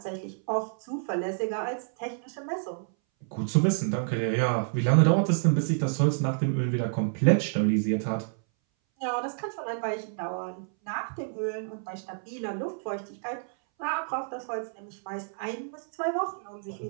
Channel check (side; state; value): left; silent; 58 dB below the other